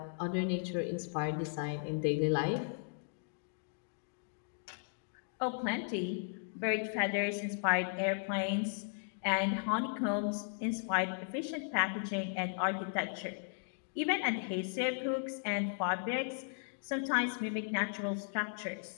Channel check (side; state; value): right; silent; digital silence